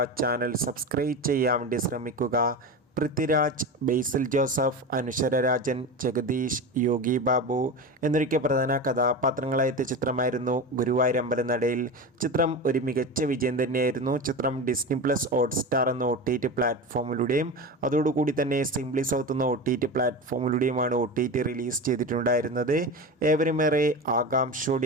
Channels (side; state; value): both; normal; correlation 0.25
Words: ചാനൽ സബ്സ്ക്രൈബ് ചെയ്യാൻ വേണ്ടി ശ്രമിക്കുക. പൃഥ്വിരാജ്, ബേസിൽ ജോസഫ്, അനുശ്വര രാജൻ, ജഗദീഷ്, യോഗി ബാബു എന്നൊക്കെ പ്രധാന കഥാപാത്രങ്ങളായെത്തിയ ചിത്രമായിരുന്നു ഗുരുവായൂരമ്പലനടയിൽ. ചിത്രം ഒരു മികച്ച വിജയം തന്നെയായിരുന്നു. ചിത്രം ഡിസ്നി പ്ലസ് ഹോട്ട്സ്റ്റാർ എന്ന OTT പ്ലാറ്റ്ഫോമിലൂടെയും അതോടുകൂടി തന്നെ സിംപ്ലി സൗത്ത് എന്ന OTT പ്ലാറ്റ്ഫോമിലൂടെയുമാണ് OTT റിലീസ് ചെയ്തിട്ടുണ്ടായിരുന്നത്. ഏവരുമേറെ